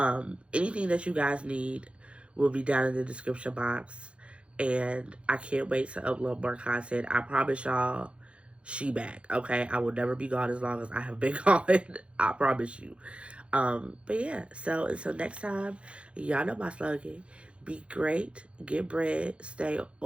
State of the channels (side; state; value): left; late; 0.059 ms